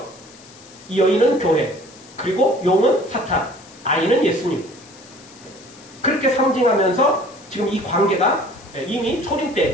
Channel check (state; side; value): noise; left; hiss, 22 dB below the sound